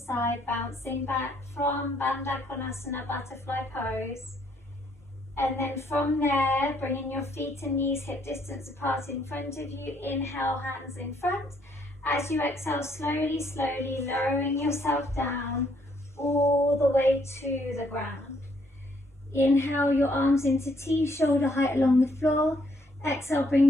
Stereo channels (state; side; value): normal; both; correlation 0.69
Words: bouncing back from Bandha Konasana, butterfly pose. And then from there, bringing your feet and knees hip distance apart in front of you. Inhale, hands in front. As you exhale, slowly, slowly lowering yourself down all the way to the ground. Inhale your arms into T, shoulder height along the floor. Exhale,